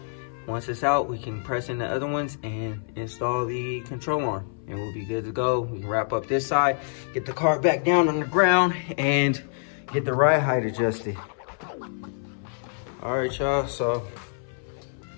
Once it's out, we can press in the other ones and install the control arm, and we'll be good to go. We can wrap up this side, get the car back down on the ground, and get the ride height adjusted. All right, y'all, so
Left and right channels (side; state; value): right; silent; 61 dB below the other